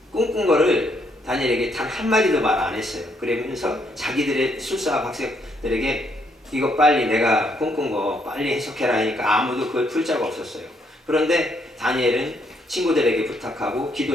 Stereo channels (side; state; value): both; normal; correlation 0.73